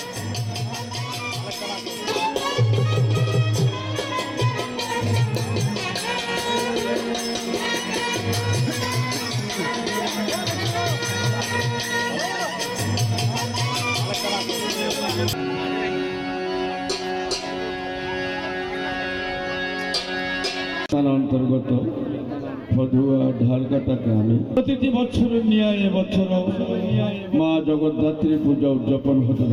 অন্তর্গত ফদুয়া ঢালকাটা গ্রামে প্রতিটি বছরের ন্যায় এবছর মা জগদ্ধাত্রী পূজা উদযাপন হতে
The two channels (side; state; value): both; identical; correlation 1.00